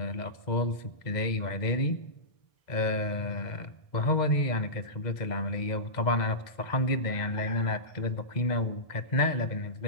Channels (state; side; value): late; right; 2.0 ms